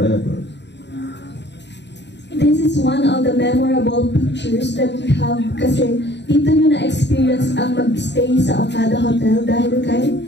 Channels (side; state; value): right; late; 0.51 ms